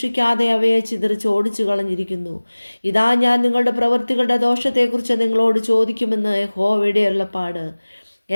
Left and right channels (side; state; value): both; inverted; correlation -1.00